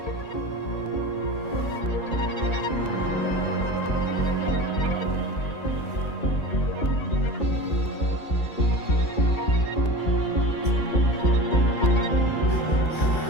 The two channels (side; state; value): right; late; 2.3 ms